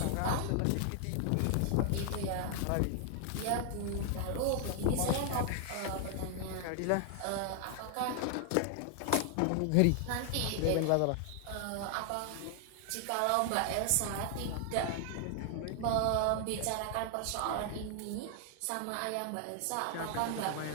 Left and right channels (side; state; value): both; different; correlation 0.00